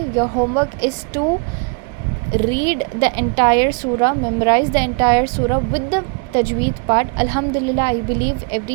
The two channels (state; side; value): quieter; left; 34.2 dB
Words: Your homework is to read the entire surah, memorize the entire surah with the tajweed part. Alhamdulillah, I believe